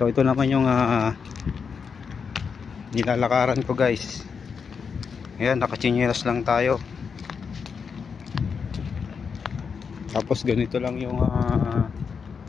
ito naman yung nilalakaran ko, guys. Ayan, nakachinelas lang tayo. Tapos ganito lang yung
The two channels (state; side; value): quieter; right; 6.0 dB